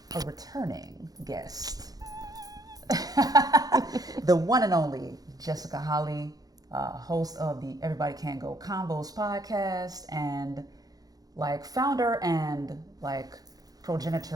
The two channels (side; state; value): left; late; 0.18 ms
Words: a returning guest. The one and only Jessica Holley, host of the Everybody Can Go Convos podcast, and founder and